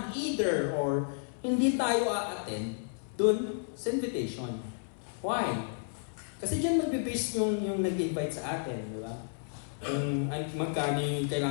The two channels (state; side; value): silent; right; 56 dB below the other